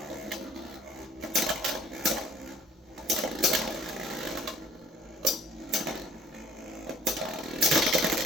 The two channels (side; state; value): both; normal; correlation 0.56